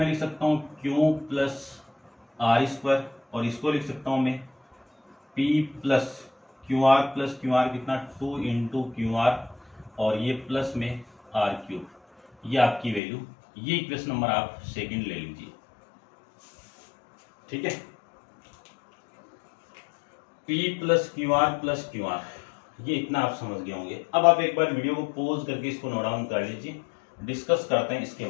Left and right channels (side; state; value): right; drops out; at 13.0 s